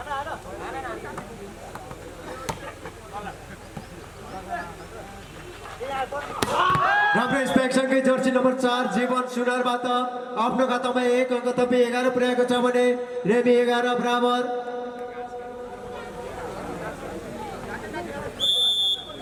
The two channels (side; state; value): both; identical; correlation 1.00